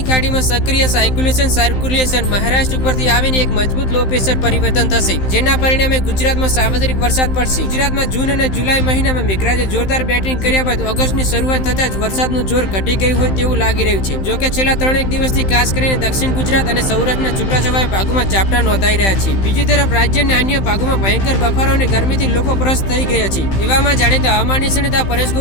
ખાડીમાં સક્રિય સર્ક્યુલેશન મહારાષ્ટ્ર ઉપરથી આવીને એક મજબૂત લો પ્રેશર પરિવર્તન થશે, જેના પરિણામે ગુજરાતમાં સાર્વત્રિક વરસાદ પડશે। ગુજરાતમાં જૂન અને જુલાઈ મહિનામાં મેઘરાજે જોરદાર બેટિંગ કર્યા બાદ ઓગસ્ટની શરૂઆત થતાં જ વરસાદનું જોર ઘટી ગયું હોય તેવું લાગી રહ્યું છે। જોકે છેલ્લા 3 દિવસથી ખાસ કરીને દક્ષિણ ગુજરાત અને સૌરાષ્ટ્રના છૂટાછવાયા ભાગોમાં ઝાપટા નોંધાઈ રહ્યા છે। બીજી તરફ રાજ્યના અન્ય ભાગોમાં ભયંકર બફારો અને ગરમીથી લોકો ત્રસ્ત થઈ ગયા છે। એવામાં જાણીતા હવામાન નિષ્ણાત પરેશ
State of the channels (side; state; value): right; late; 15 ms